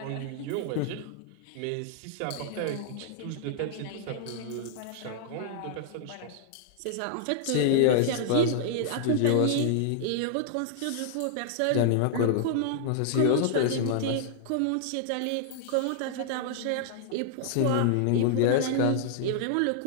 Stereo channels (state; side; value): different; both; correlation -0.01